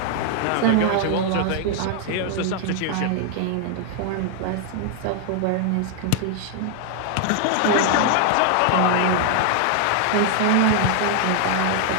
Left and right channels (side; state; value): both; different; correlation 0.00